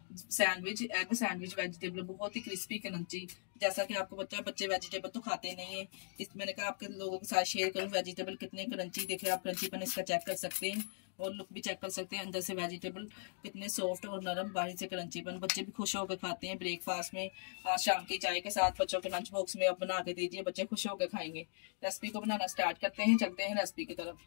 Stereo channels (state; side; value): silent; right; digital silence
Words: sandwich, egg sandwich vegetable, बहुत ही क्रिस्पी क्रंची। जैसा कि आपको पता है बच्चे वेजिटेबल तो खाते नहीं है, इस मैंने कहा आपके लोगों के साथ शेयर करूं वेजिटेबल कितने क्रंची। देखिए आप क्रंचीपन इसका चेक कर सकते हैं और लुक भी चेक कर सकते हैं। अंदर से वेजिटेबल कितने सॉफ्ट और नरम, बाहर से क्रंचीपन। बच्चे भी खुश होकर खाते हैं ब्रेकफास्ट में, आज शाम की चाय के साथ बच्चों के लंच बॉक्स में आप बना के दीजिए, बच्चे खुश होकर खाएंगे। रेसिपी को बनाना स्टार्ट करते हैं, चलते हैं रेसिपी की तरफ।